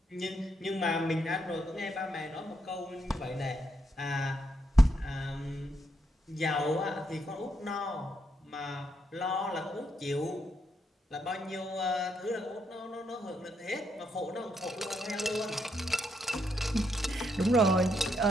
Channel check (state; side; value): normal; both; correlation 0.78